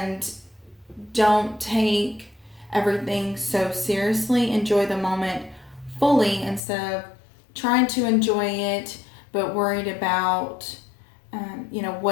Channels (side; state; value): right; drops out; at 6.6 s